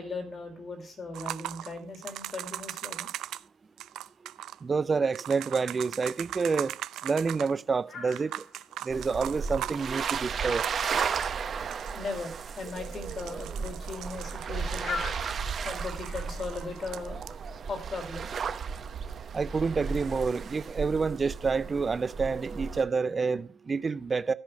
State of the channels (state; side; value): quieter; left; 4.3 dB